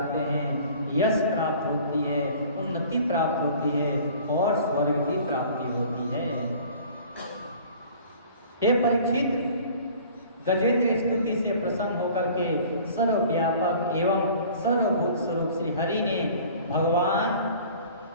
हैं, यश प्राप्त होती है, उन्नति प्राप्त होती है और स्वर्ग की प्राप्ति होती है। हे परीक्षित, गजेंद्र स्तुति से प्रसन्न होकर के सर्वव्यापक एवं सर्वभूत स्वरूप श्री हरि ने भगवान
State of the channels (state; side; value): inverted; both; correlation -0.48